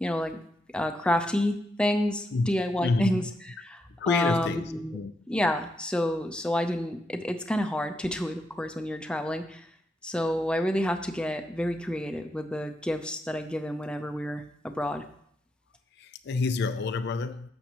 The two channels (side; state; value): both; normal; correlation 0.81